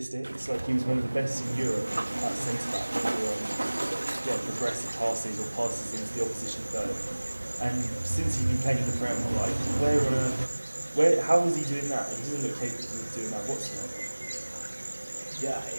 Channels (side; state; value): both; inverted; correlation -1.00